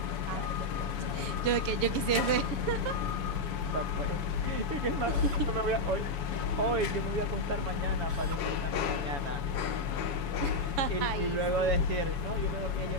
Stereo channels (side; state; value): left; late; 7.1 ms